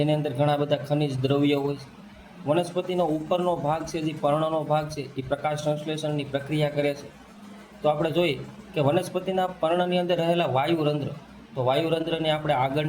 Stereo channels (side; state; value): both; identical; correlation 1.00